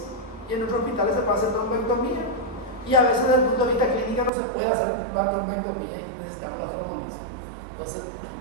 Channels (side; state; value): left; drops out; at 4.3 s